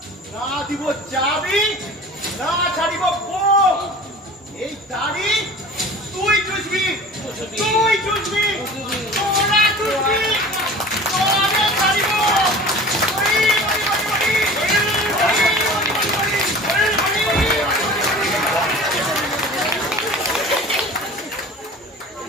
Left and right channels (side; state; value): both; normal; correlation 0.40